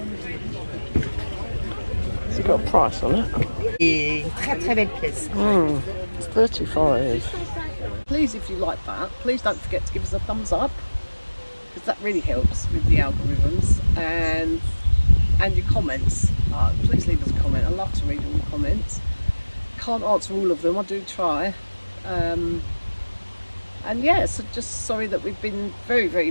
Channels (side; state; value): both; inverted; correlation -1.00